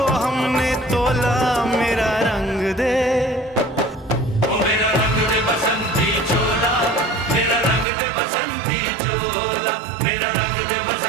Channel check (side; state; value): left; drops out; at 7.9 s